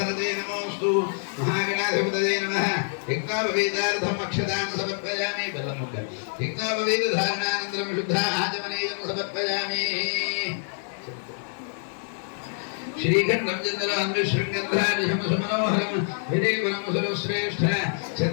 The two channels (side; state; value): right; silent; digital silence